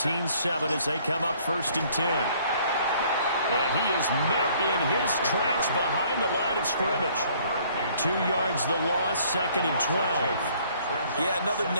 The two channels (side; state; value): both; inverted; correlation -0.60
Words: as they come up 1st and 10. And he is met in his tracks behind the line of scrimmage. 2 yards the loss, 2nd and 12. Yeah, another